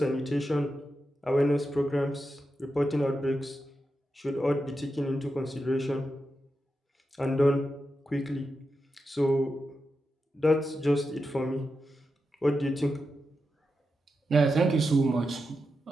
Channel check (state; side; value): normal; both; correlation 0.88